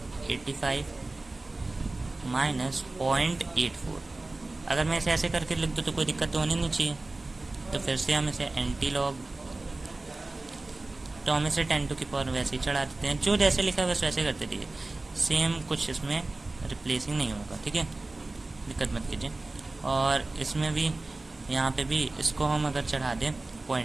85 माइनस 0.84, अगर मैं इसे ऐसे करके लिख दूँ तो कोई दिक्कत तो होनी नहीं चाहिए। तो फिर से हम इसे एंटी लॉग, तो हम इसे 10 की पावर वैसे ही चढ़ा देते हैं, जो जैसे लिखा है बस वैसे करते रहिए, सेम कुछ इसमें रिप्लेसिंग नहीं होगा, ठीक है, दिक्कत मत कीजिए। और इसमें भी, यहाँ पे भी इसको हम अगर चढ़ा दें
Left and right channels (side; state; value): left; quieter; 3.1 dB